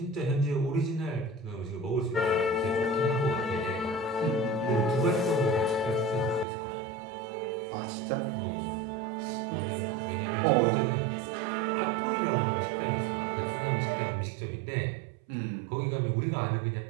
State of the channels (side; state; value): left; drops out; at 6.5 s